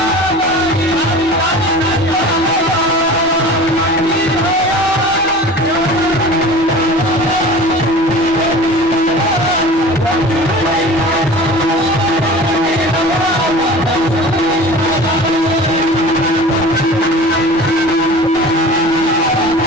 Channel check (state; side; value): normal; both; correlation 0.39